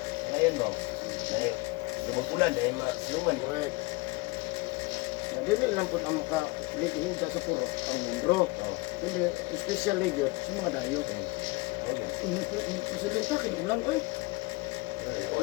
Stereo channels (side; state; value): right; quieter; 24.0 dB